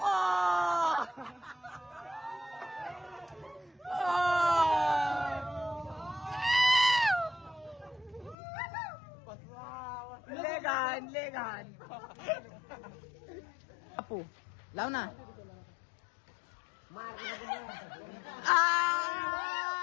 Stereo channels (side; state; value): right; drops out; at 8.3 s